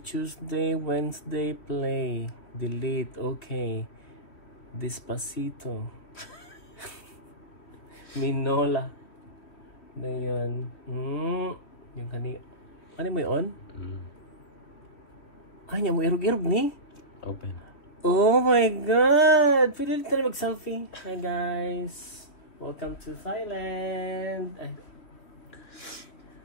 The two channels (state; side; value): late; right; 3.4 ms